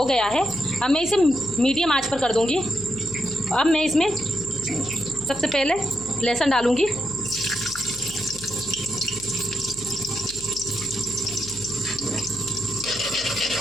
गया है, अब मैं इसे मीडियम आंच पर कर दूंगी। अब मैं इसमें सबसे पहले लहसुन डालूंगी।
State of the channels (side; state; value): left; noise; hum, 18 dB below the sound